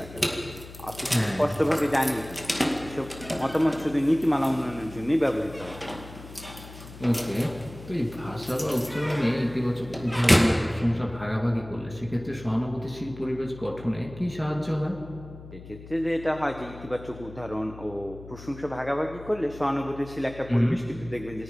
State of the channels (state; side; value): noise; left; hum, 16 dB below the sound